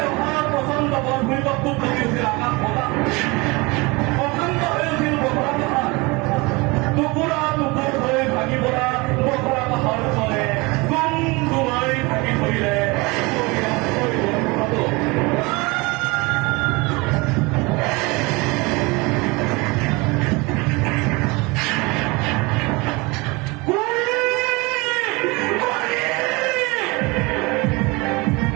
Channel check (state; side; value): quieter; left; 25.4 dB